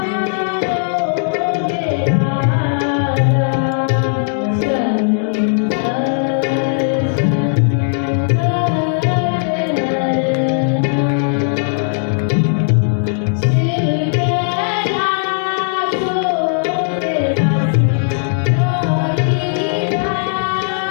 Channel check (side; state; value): right; silent; digital silence